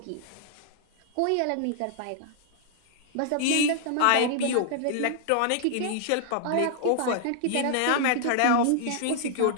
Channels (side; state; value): both; different; correlation -0.01